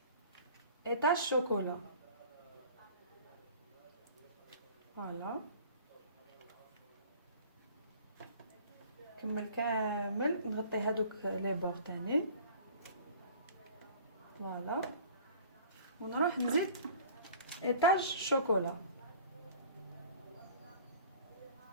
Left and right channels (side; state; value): both; inverted; correlation -0.46